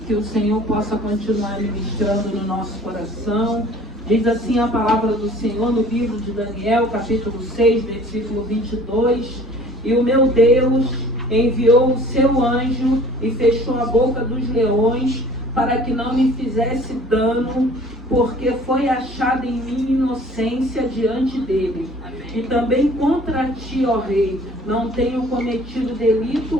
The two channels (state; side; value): normal; both; correlation 0.50